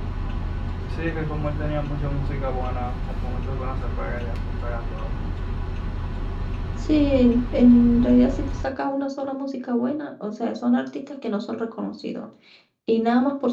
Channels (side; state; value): both; identical; correlation 1.00